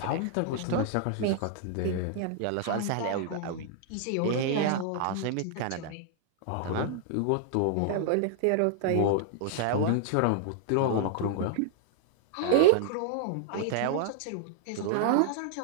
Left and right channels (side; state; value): both; different; correlation -0.01